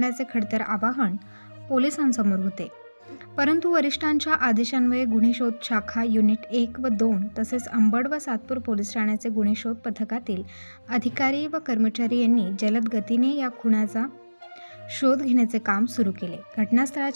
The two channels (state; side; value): inverted; both; correlation -1.00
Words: खडतर आवाहन पोलिसांसमोर होते। परंतु वरिष्ठांच्या आदेशान्वये गुन्हे शोध शाखा युनिट 1 व 2 तसेच अंबड व सातपूर पोलीस ठाण्याचे गुन्हे शोध पथकातील अधिकारी व कर्मचारी यांनी जलद गतीने या खुनाचा शोध घेण्याचे काम सुरू केले।